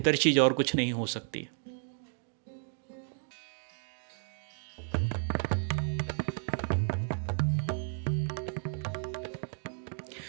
चीज़ और कुछ नहीं हो सकती।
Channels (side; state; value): left; silent; 56 dB below the other